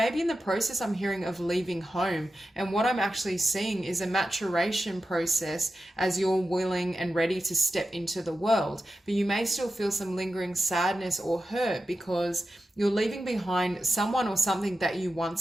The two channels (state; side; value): normal; both; correlation 0.91